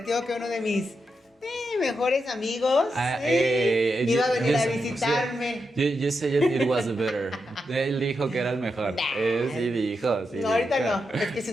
que uno de mis mejores amigos iba a venir a visitarme. You said it was better. Él dijo que era el mejor. Sí dijo, sí. No, ahorita no, es que si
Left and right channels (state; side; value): normal; both; correlation 0.86